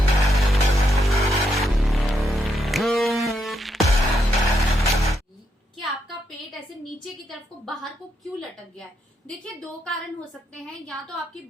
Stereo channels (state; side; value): normal; both; correlation 0.80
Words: कि आपका पेट ऐसे नीचे की तरफ को बाहर को क्यों लटक गया है। देखिए, दो कारण हो सकते हैं। या तो आपकी